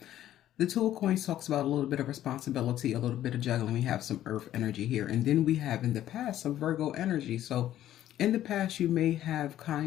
The Two of Coins talks about a little bit of responsibility, a little bit of juggling. We have some earth energy here. And then we have in the past some Virgo energy. So in the past, you may have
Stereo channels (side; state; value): right; quieter; 12.5 dB